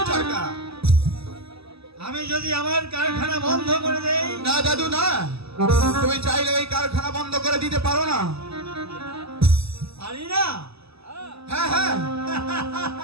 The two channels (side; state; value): left; late; 0.78 ms